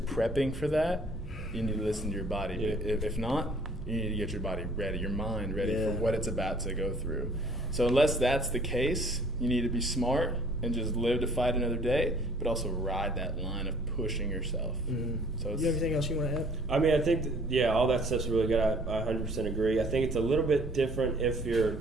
for that, you need to listen to your body. Yeah. If not, you need to get your body ready, your mind ready for what it's about to go through. So unless that's the case, you need to be smart and just live to fight another day, but also ride that line of pushing yourself. So You have anything else you want to add? I mean, I think, all that stuff's really good. I 100% agree. I think it's a little bit different if you're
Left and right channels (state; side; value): normal; both; correlation 0.56